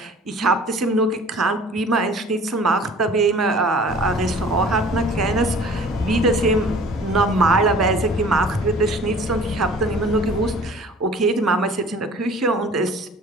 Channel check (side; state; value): both; normal; correlation 0.47